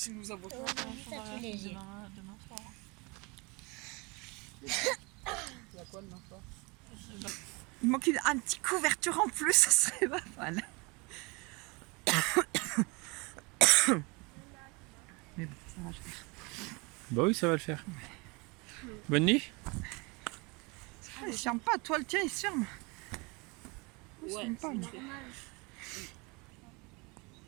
nous avons Ça fait léger. Demain soir. Il y a quoi demain soir? Il manque un petit couverture en plus, ça serait pas mal. Mais bon, ça va le faire. Bah oui, ça va le faire. Bonne nuit. Ah, il se ferme pas, toi le tien il se ferme. Il se ferme pas, lui.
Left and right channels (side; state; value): left; quieter; 27.9 dB